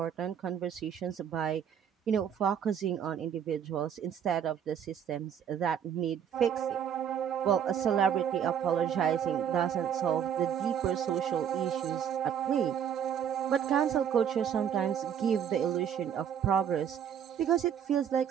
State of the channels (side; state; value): left; quieter; 8.6 dB